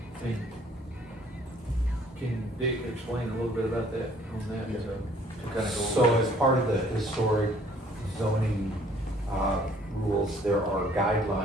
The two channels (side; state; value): both; normal; correlation 0.59